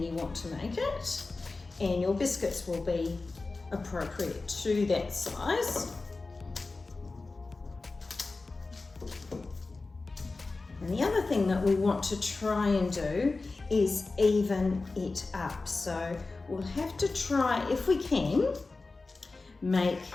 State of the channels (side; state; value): right; quieter; 3.6 dB